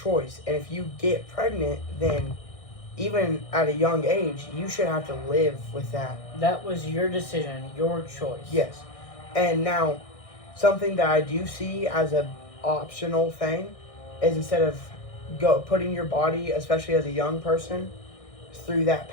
And if you get pregnant, then even at a young age, you should have to live with that. That was your decision, your choice. Yes. And now, something that I do see as a optional thing is instead of putting your body, especially as a young person, through that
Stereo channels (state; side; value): late; right; 1.6 ms